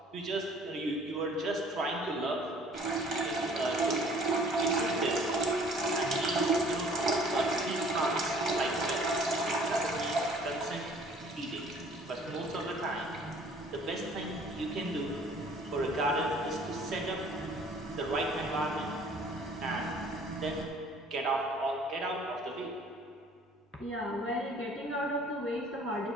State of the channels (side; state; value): both; normal; correlation 0.54